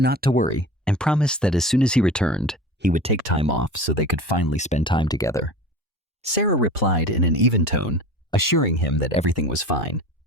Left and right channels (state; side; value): normal; both; correlation 0.35